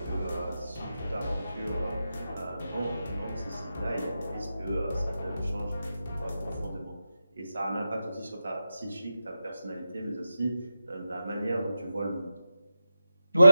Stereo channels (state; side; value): inverted; both; correlation -0.91